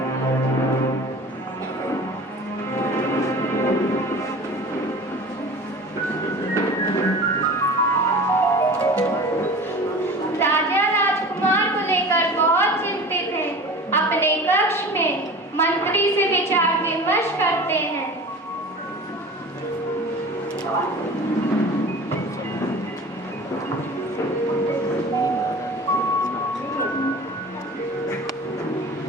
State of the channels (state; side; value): normal; both; correlation 0.38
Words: अपने कक्ष में मंत्री से विचार विमर्श करते हैं।